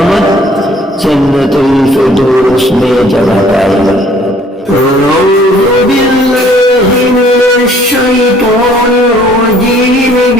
जन्नतुल फिरदौस में जगह पाएगा।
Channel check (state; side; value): normal; both; correlation 0.58